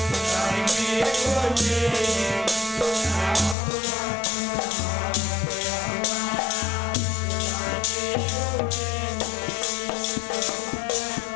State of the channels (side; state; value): right; drops out; at 3.6 s